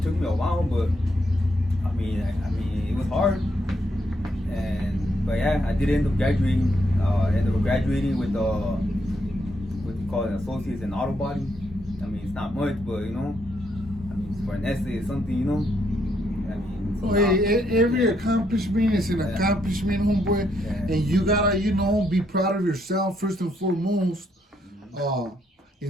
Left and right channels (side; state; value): both; normal; correlation 0.75